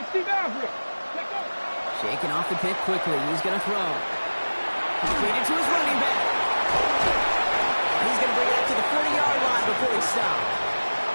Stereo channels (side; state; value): both; inverted; correlation -1.00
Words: Shaking off the pick quickly. He's going to throw. Completed to his running back. He's going to bring it up to the 40-yard line before he stops.